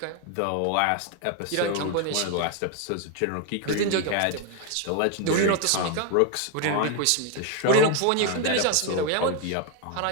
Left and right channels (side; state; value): both; different; correlation 0.01